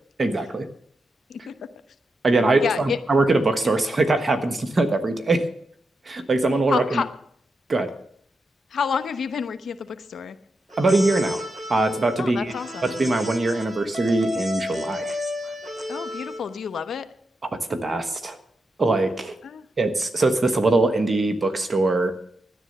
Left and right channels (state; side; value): normal; both; correlation 0.86